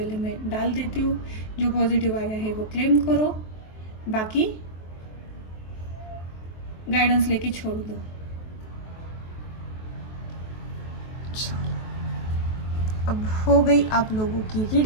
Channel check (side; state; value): right; late; 23 ms